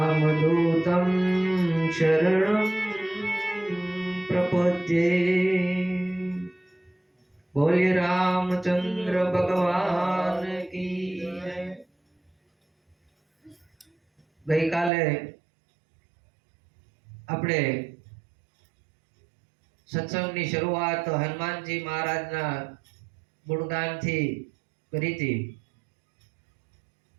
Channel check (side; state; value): left; drops out; at 14.9 s